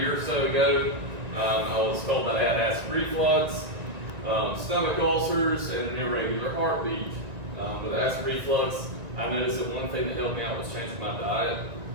or so ago, I was told that I had acid reflux, stomach ulcers, and an irregular heartbeat. With acid reflux, I noticed that one thing that helped me out was changing my diet.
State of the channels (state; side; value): late; left; 1.9 ms